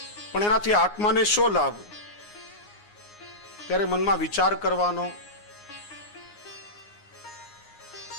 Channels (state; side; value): late; right; 9.6 ms